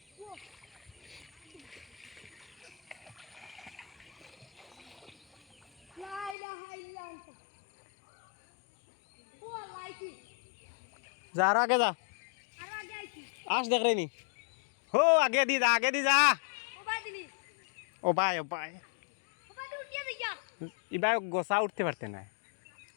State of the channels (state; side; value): drops out; right; at 6.4 s